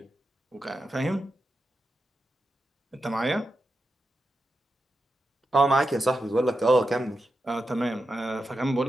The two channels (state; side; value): normal; both; correlation 0.88